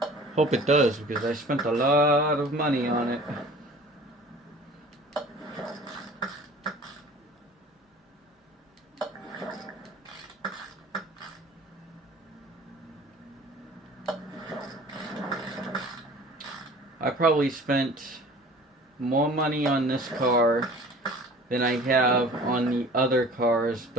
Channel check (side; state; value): both; normal; correlation 0.45